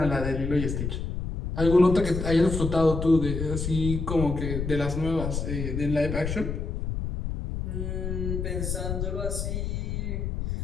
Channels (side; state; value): left; noise; rumble, 3 dB below the sound